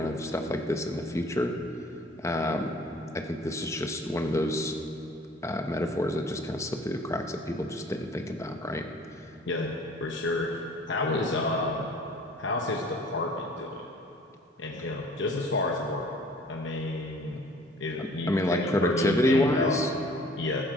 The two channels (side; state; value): both; normal; correlation 0.52